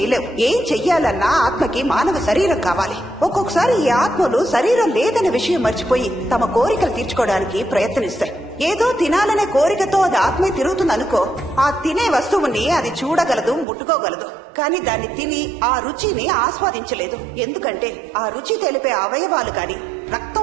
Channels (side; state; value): left; drops out; at 13.7 s